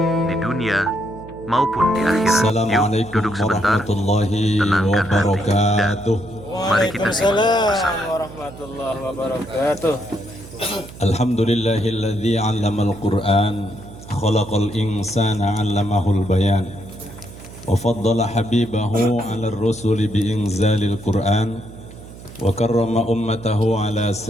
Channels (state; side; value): noise; right; hum, 17 dB below the sound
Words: di dunia maupun di akhirat. Yuk, duduk sebentar, tenangkan hati, dan mari kita simak bersama. Warahmatullahi wabarakatuh. Alhamdulillahilladzi 'allamal Qur'an khalaqal insana 'allamahul bayan wa faddala habibahu 'alar rusuli bi inzalil Qur'an wa karrama ummatahu 'ala